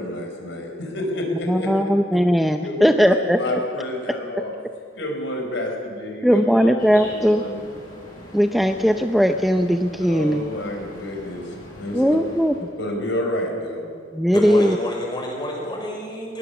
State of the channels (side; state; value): both; normal; correlation 0.83